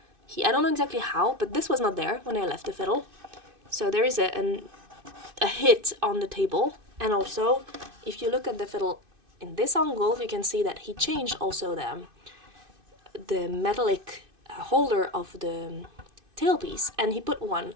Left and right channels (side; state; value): left; late; 2.6 ms